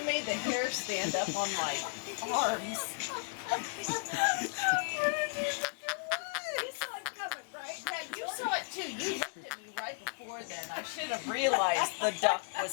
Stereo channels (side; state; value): right; silent; digital silence